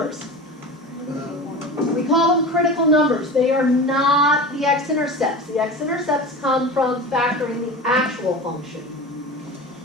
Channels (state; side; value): normal; both; correlation 0.31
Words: We call them critical numbers. They are not the x-intercepts. The x-intercepts come from factoring the actual function.